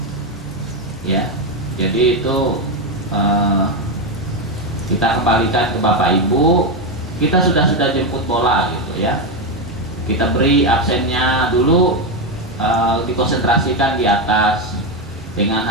ya. Jadi itu kita kembalikan ke Bapak Ibu, kita sudah jemput bola gitu ya, kita beri absennya dulu, dikonsentrasikan di atas. dengan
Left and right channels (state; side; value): normal; both; correlation 0.09